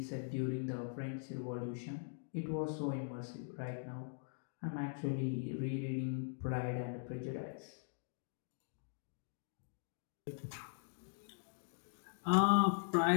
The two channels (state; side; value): silent; right; digital silence